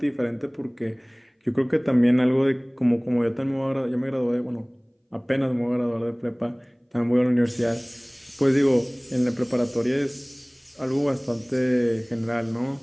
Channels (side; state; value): both; identical; correlation 1.00